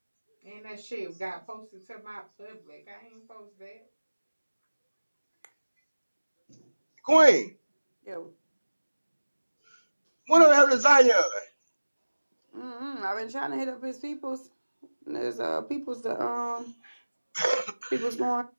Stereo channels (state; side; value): inverted; both; correlation -1.00